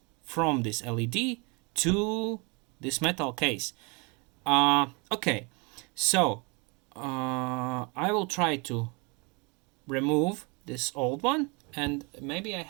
from this LED to this metal case. Okay, so I will try to remove this old one, and maybe I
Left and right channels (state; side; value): quieter; left; 30.6 dB